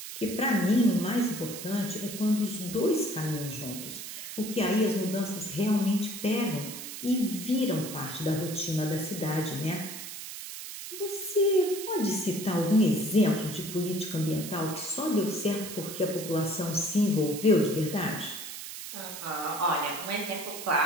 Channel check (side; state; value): right; noise; hiss, 9 dB below the sound